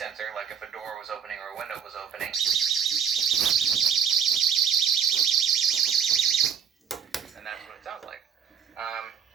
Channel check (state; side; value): quieter; left; 7.4 dB